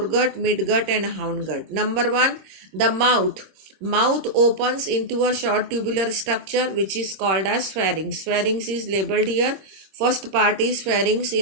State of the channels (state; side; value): late; left; 26 ms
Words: midgut and hindgut. Number one, the mouth. Mouth opens into a short tubular structure which is called as pharynx. Pharynx is labeled here. First part is pharynx,